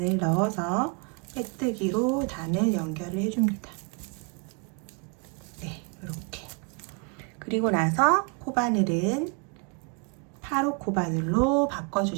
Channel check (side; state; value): left; quieter; 33.4 dB